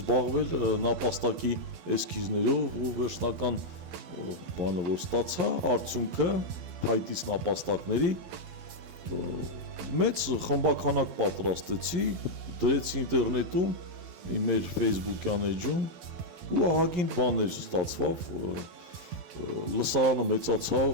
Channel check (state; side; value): late; left; 11 ms